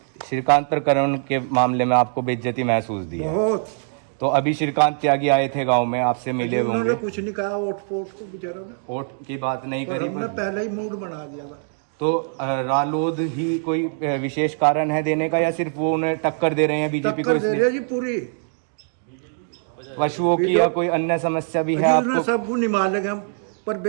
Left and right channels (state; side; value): silent; left; digital silence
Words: श्रीकांत प्रकरण के मामले में आपको बेइज्जती महसूस दी है? बहुत। तो अभी श्रीकांत त्यागी आए थे गांव में, आपसे मिले उन्होंने होंगे। कुछ नहीं कहा वोट फोट को बेचारों ने, वोट की बात नहीं पर करी, हमने पहले ही मूड बना दिया था। तो रालोद ही कोई विशेष कारण है देने का, या सिर्फ वो उन्हें टक्कर दे रहे हैं बीजेपी को? टक्कर दे रहे जी पूरी। पशुओं की या कोई अन्य समस्या भी है उन्हें आपको? सबको निभा लेंगे हम, पर